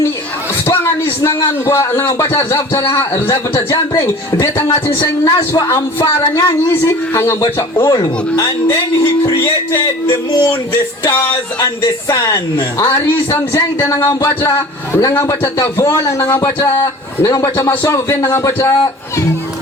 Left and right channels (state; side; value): normal; both; correlation 0.42